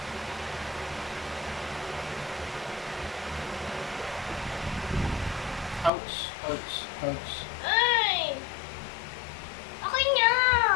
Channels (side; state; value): right; drops out; at 5.9 s